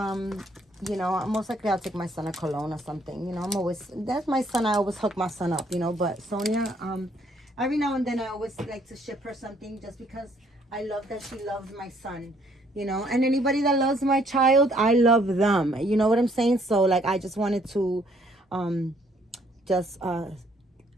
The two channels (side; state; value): both; normal; correlation 0.65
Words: know, most likely I'll take my son a cologne or something. You know, that's my son. I always hook my son up, you know. But Sonia, every now and then I always like to ship her something just because I love that she loves my son. You know, and anybody that loves my child, I love them. You know what I'm saying? So like, I just wanted to